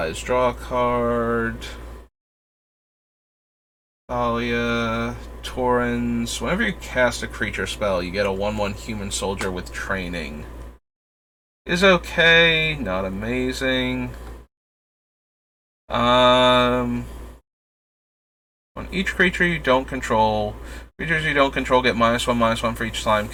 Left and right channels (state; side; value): identical; both; correlation 1.00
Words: draw a card. Thalia. Torrens. Whenever you cast a creature spell, you get a 1/1 human soldier with training. Is okay, not amazing. On each creature you don't control, creatures you don't control get -1/-1 for each slime